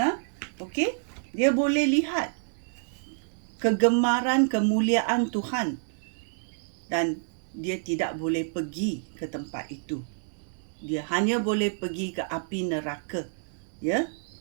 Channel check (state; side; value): silent; left; digital silence